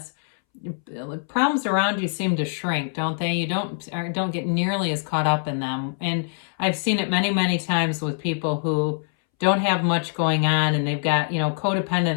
problems around you seem to shrink, don't they? You don't get nearly as caught up in them. And I've seen it many, many times with people who don't have much going on, and they've got,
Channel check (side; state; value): right; silent; 63 dB below the other